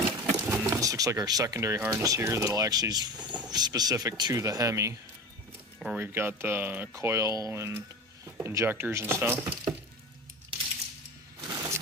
this looks like our secondary harness here that'll actually is specific to the Hemi, where we've got the coil and injectors and stuff.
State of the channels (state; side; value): normal; both; correlation 0.30